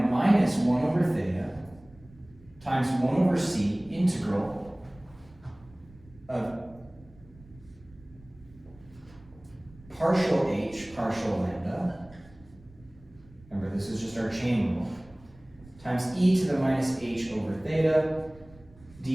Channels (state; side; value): noise; right; rumble, 24 dB below the sound